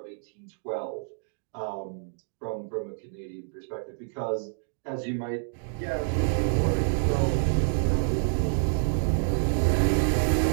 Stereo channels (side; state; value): left; silent; digital silence